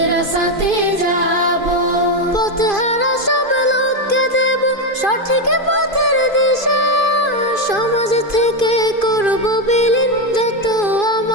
যাব। পথহারা সব লোককে দেব সঠিক পথের দিশা, সমাজ থেকে করব বিলীন যত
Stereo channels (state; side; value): late; right; 2.5 ms